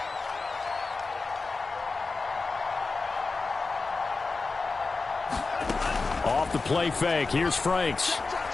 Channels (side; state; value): right; quieter; 4.0 dB